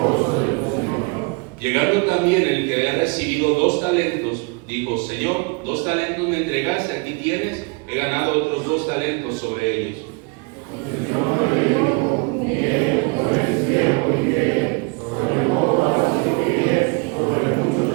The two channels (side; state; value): left; quieter; 32.3 dB